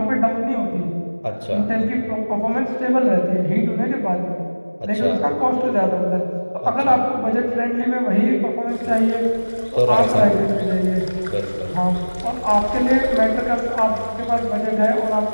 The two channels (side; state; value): both; inverted; correlation -1.00